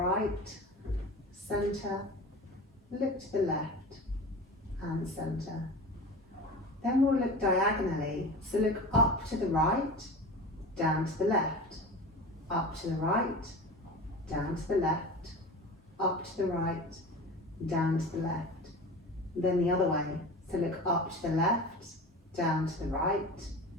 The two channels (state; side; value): normal; both; correlation 0.33